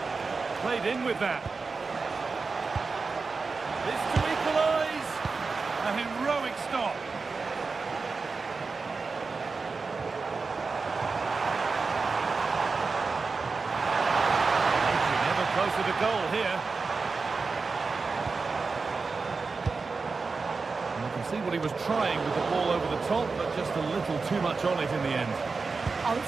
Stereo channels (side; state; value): left; quieter; 4.4 dB